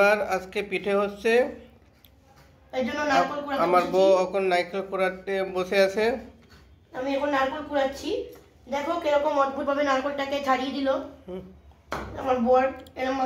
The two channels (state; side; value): identical; both; correlation 1.00